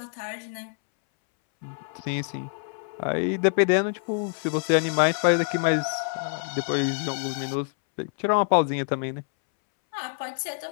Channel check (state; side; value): silent; right; 61 dB below the other